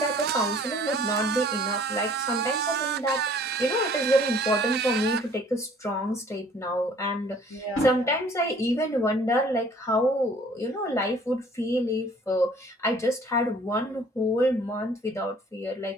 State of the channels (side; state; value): both; normal; correlation 0.54